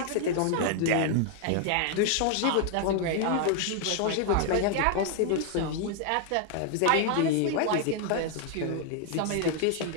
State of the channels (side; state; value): both; different; correlation 0.00